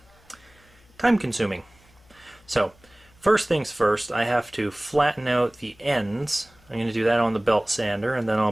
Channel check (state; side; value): noise; left; hum, 29 dB below the sound